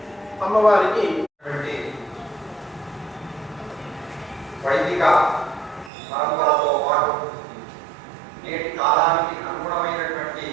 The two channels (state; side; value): drops out; left; at 5.9 s